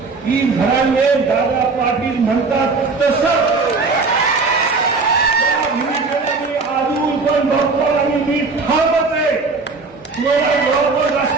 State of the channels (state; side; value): quieter; left; 4.2 dB